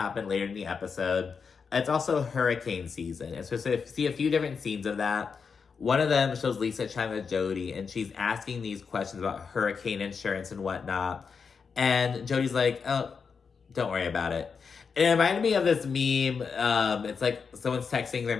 later in the episode. It's also hurricane season. It's supposed to see a few different scenes of that. One of them shows Lisa chatting with Jody, and she's asking these questions about hurricane insurance and whatnot. And Jody's like, "Oh, don't worry about it." And it reminded me of this meme. It's like someone's texting their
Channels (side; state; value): right; quieter; 5.7 dB